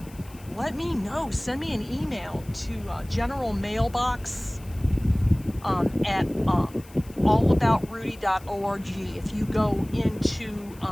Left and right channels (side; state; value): left; noise; hiss, 23 dB below the sound